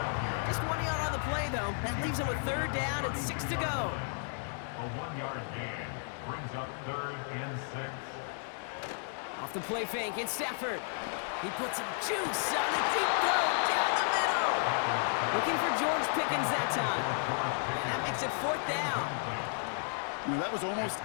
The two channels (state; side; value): silent; right; 56 dB below the other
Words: Just 1 yard on the play, though. That leaves him with 3rd down and 6 to go. A 1-yard gain brings up 3rd and 6. Off the play fake, it's Stafford. He puts some juice on a deep throw down the middle. Looking for George Pickens that time. And that makes it 4th down. You know, that was almost